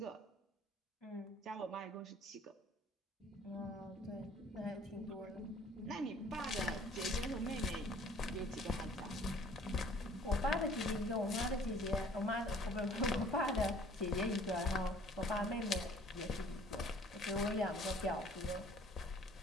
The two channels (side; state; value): both; normal; correlation 0.54